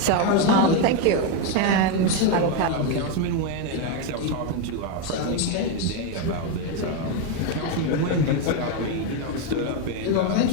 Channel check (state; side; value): different; both; correlation 0.02